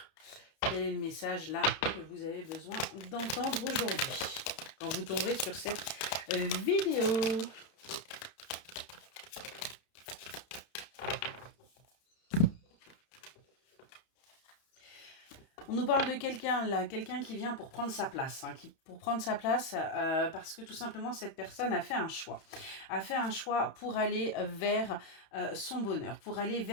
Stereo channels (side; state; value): right; late; 31 ms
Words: Quel est le message là que vous avez besoin d'entendre aujourd'hui quand vous tomberez sur cette vidéo? On nous parle de quelqu'un là, quelqu'un qui vient pour prendre sa place, parce que tout simplement cette personne a fait un choix. A fait un choix pour aller vers son bonheur, pour aller